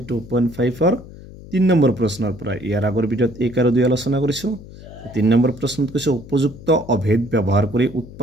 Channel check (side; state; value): left; noise; hum, 17 dB below the sound